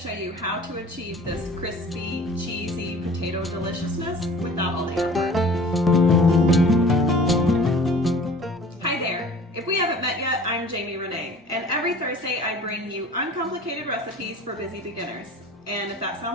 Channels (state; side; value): normal; both; correlation 0.45